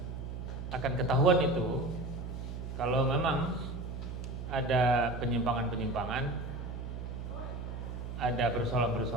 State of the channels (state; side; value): noise; right; hum, 7 dB below the sound